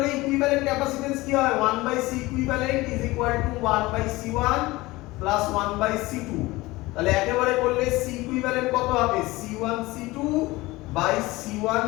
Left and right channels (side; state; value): right; quieter; 20.4 dB